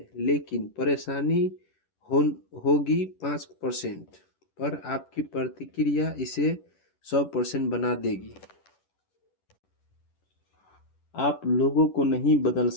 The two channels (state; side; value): late; right; 10 ms